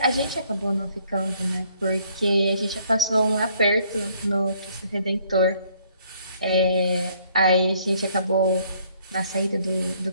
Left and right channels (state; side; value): inverted; both; correlation -0.64